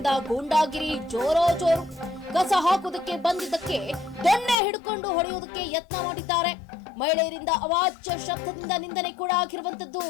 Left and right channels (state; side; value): drops out; right; at 4.5 s